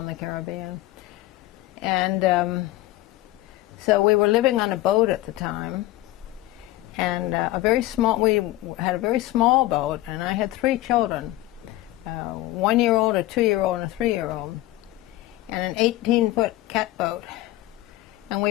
the Caribbean. And so we were living on a boat at the time, and we had a very small boat, and I had 3 children, a 1-year-old, a 2-year-old, and a 3-year-old, and an 18-foot catboat. And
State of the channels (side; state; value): right; quieter; 17.2 dB